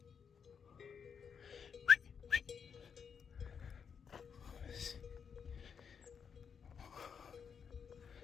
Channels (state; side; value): quieter; right; 6.7 dB